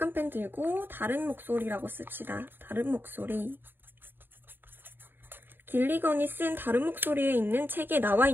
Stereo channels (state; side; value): late; left; 0.096 ms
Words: 펜 들고 다른 목소리라고 씁시다. 다른 목소리. 길리건이 쓴 다른 목소리에 있는 책에 나와